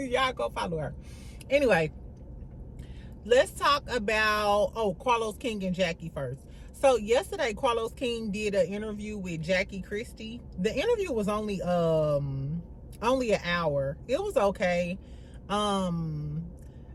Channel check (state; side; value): identical; both; correlation 1.00